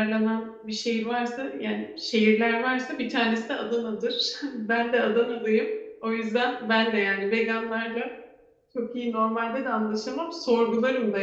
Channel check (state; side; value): identical; both; correlation 1.00